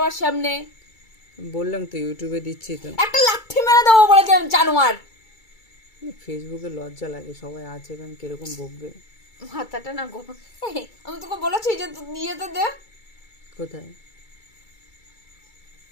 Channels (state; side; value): late; right; 2.3 ms